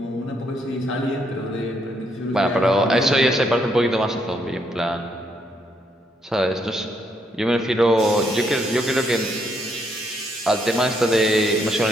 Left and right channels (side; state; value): both; normal; correlation 0.74